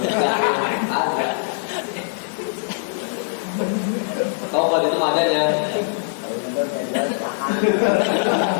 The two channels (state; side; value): silent; right; digital silence